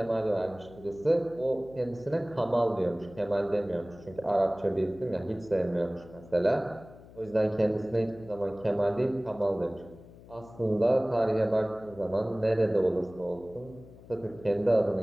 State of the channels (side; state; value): left; noise; hum, 20 dB below the sound